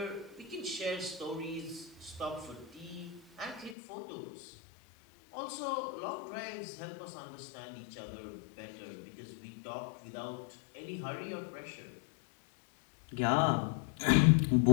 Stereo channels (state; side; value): drops out; right; at 3.8 s